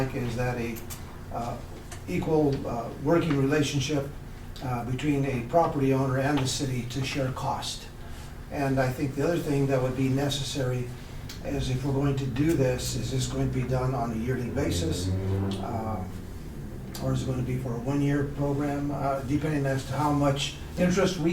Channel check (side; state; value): both; identical; correlation 1.00